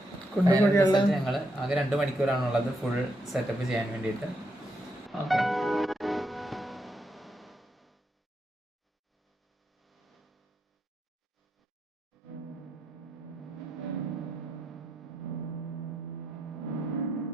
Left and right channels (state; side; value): normal; both; correlation 0.80